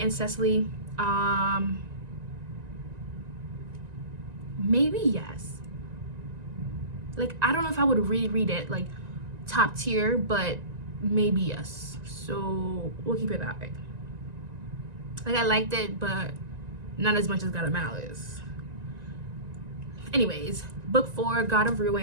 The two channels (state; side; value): late; left; 1.9 ms